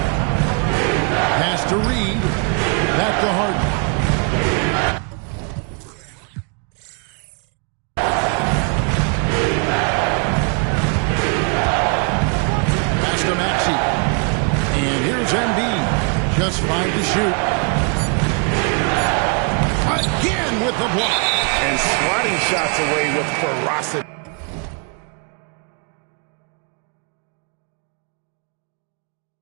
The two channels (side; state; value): left; quieter; 37.6 dB